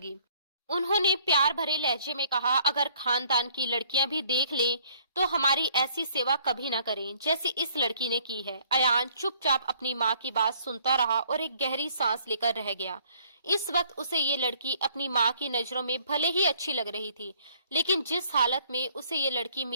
उन्होंने प्यार भरे लहजे में कहा, अगर खानदान की लड़कियां भी देख लें तो हमारी ऐसी सेवा कभी ना करें जैसी इस लड़की ने की है। अयान चुपचाप अपनी माँ की बात सुनता रहा और एक गहरी सांस लेकर रह गया। इस वक्त उसे ये लड़की अपनी माँ की नजरों में भले ही अच्छी लग रही थी, लेकिन जिस हालत में उसे ये लड़की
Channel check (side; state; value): both; inverted; correlation -0.61